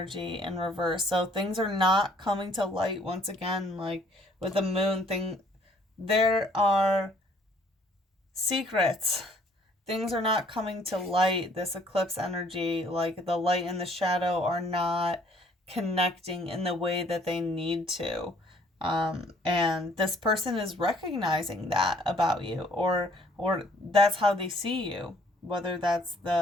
in reverse. So things are not coming to light once again, with the moon thing. There are secrets. Things are not coming to light. This eclipse energy, the light and the shadow, are not connecting in the way that they need to. And this person is recognizing that about you, or that's how they see you. whether that's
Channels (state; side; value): normal; both; correlation 0.60